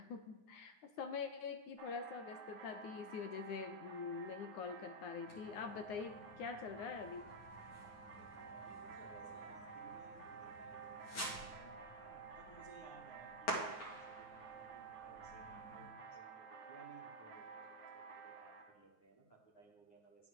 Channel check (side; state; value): right; late; 9.6 ms